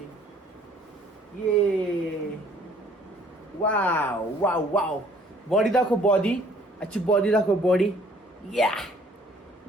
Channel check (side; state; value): both; normal; correlation 0.59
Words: ये वाव. बॉडी दाखव, बॉडी. अच्छी बॉडी दाखव, बॉडी. या